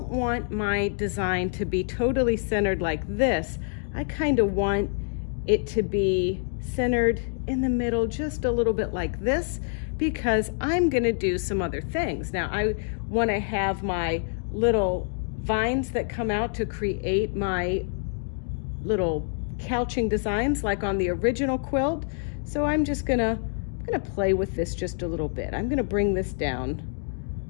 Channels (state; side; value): silent; right; 60 dB below the other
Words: want my design to be totally centered like this. I kind of want it to be centered in the middle just a little bit like this, because I'm going to do some other things. Now I want to have my little vines that come out to create my little couching designs like on the original quilt. So I'm just gonna play with this just a little bit. I'm gonna bring this down